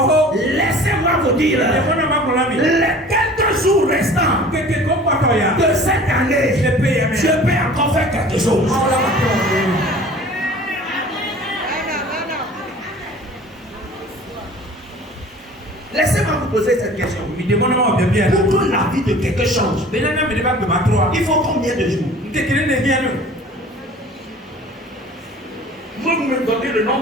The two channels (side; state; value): both; normal; correlation 0.45